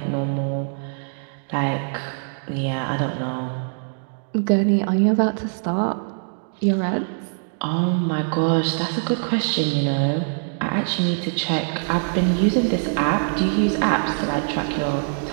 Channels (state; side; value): silent; left; digital silence